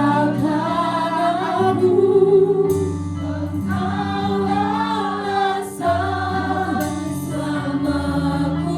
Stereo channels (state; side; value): identical; both; correlation 1.00